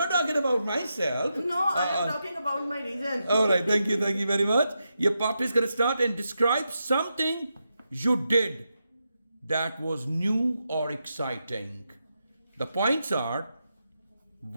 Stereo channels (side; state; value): both; inverted; correlation -0.86